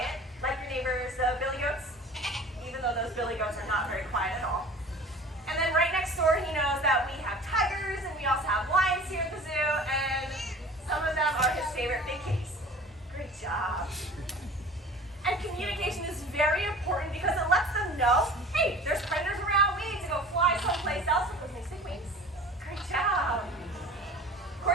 like your neighbors, the billy goats, even though those billy goats are not very quiet at all. And then right next door, he knows that we have tigers, and we also have lions here at the zoo, and some of them are his favorite big kitties. Great job. And communication is very important because it lets them know, hey, there's predators around, we need to go fly someplace else with those nice big wings. Great job.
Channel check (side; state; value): both; normal; correlation 0.42